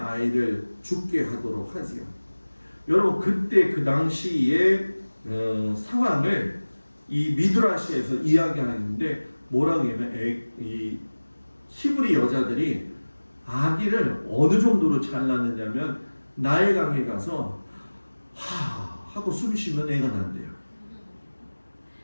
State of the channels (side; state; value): both; inverted; correlation -1.00